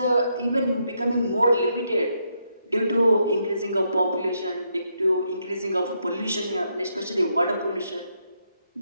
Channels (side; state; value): both; inverted; correlation -0.78